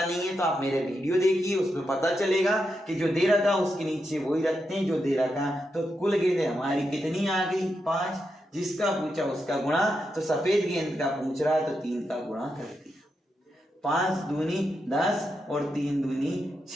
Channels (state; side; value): normal; both; correlation 0.85